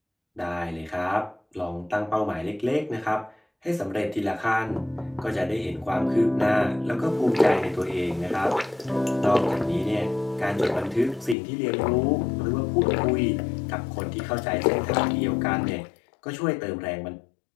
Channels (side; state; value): right; drops out; at 11.4 s